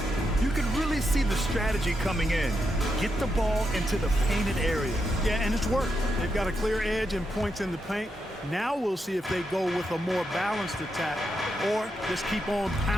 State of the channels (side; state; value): both; normal; correlation 0.84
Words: You can really see the strategy coming in. Get the ball into the painted area. Yeah, and it's worked. They've got a clear edge and points in the paint. Now we'll see if they go with a more balanced attack or just keep on